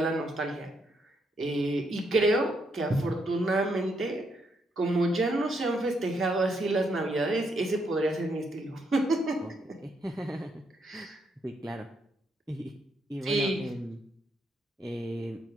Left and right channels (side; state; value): both; normal; correlation 0.76